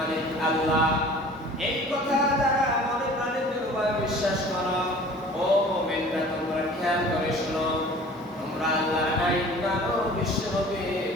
আল্লাহ, এই কথা যারা মনে প্রাণে দৃঢ়ভাবে বিশ্বাস করো, ও মুমিনরা তোমরা খেয়াল করে শোনো, তোমরা আল্লাহর আইন মানো, বিশ্ব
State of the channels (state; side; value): normal; both; correlation 0.46